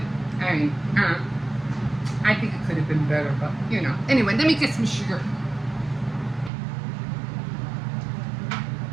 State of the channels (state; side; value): drops out; left; at 6.5 s